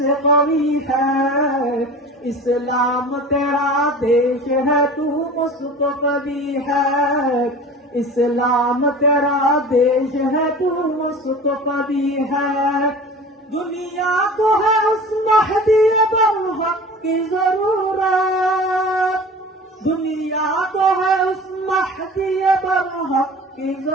कवी है। इस्लाम तेरा देश है तू मुस्तफ़ी है। इस्लाम तेरा देश है तू मुस्तफ़ी है। दुनिया को है उस महदी बरहक की जरूरत। दुनिया को है उस महदी बरहक की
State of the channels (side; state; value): both; normal; correlation 0.38